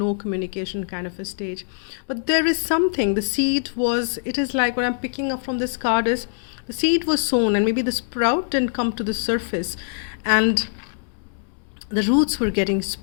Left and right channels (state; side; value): silent; right; digital silence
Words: communication kind of a stage. But there is something, the seed was, it is like what I'm picking up from this card is, the seed was sown and maybe the sprout didn't come to the surface, and the roots were getting